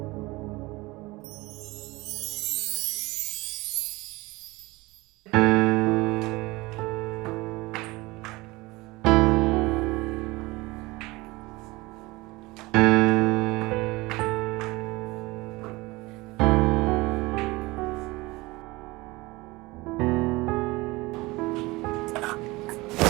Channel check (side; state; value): left; quieter; 21.9 dB